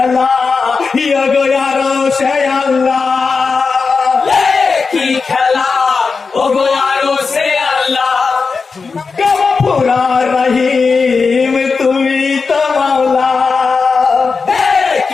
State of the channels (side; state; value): right; quieter; 4.8 dB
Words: ইয়গো আরো সে আল্লাহ কি খেলা ও গো আরো সে আল্লাহ গফুরা রহিম তুমি তো মাওলা